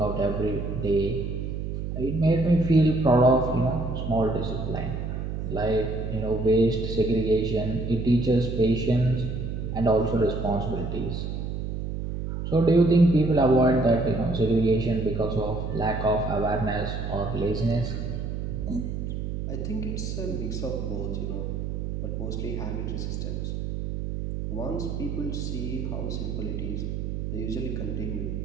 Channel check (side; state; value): right; noise; hum, 4 dB below the sound